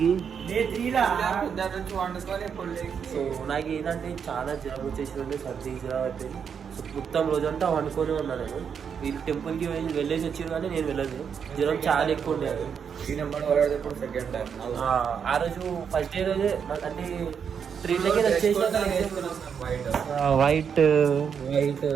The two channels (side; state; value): left; quieter; 7.1 dB